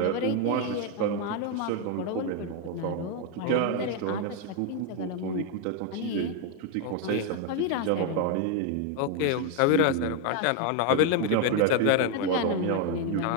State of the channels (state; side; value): different; both; correlation 0.01